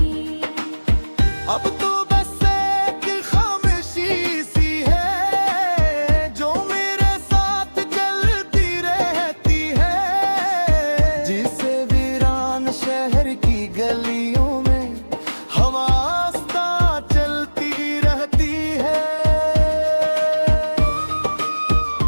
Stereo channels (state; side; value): inverted; both; correlation -1.00